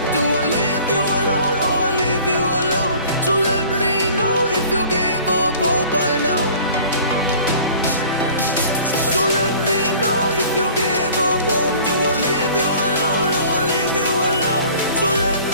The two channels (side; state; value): both; inverted; correlation -0.48